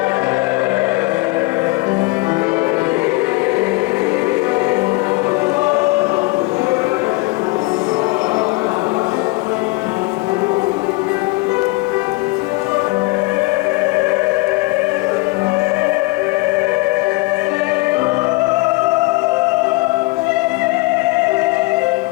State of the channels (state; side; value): quieter; right; 23.8 dB